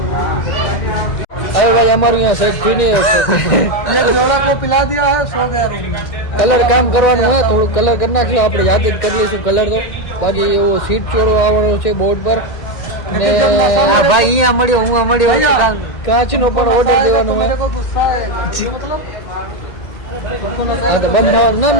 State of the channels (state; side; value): late; right; 1.8 ms